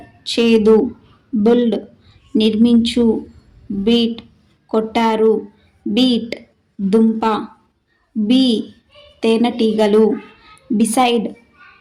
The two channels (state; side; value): identical; both; correlation 1.00